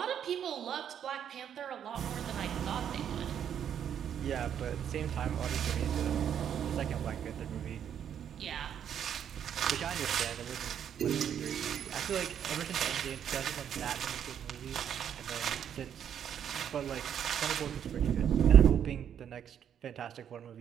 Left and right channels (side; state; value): left; quieter; 9.0 dB